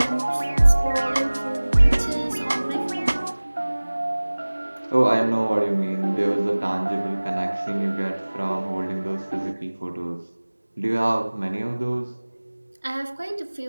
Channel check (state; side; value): inverted; both; correlation -1.00